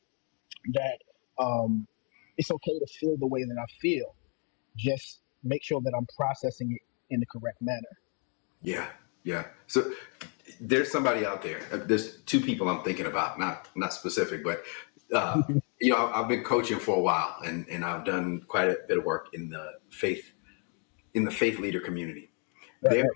that um, it's okay to feel the way that I feel. Just make sure that I'm processing it in the correct manner. Yeah. Yeah. So there's somebody out there. There's two people I'm thinking about, not specific, but I've been coaching for a while, and I've done quite a bit of work in the faith leader community. Right, There right.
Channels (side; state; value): right; quieter; 39.1 dB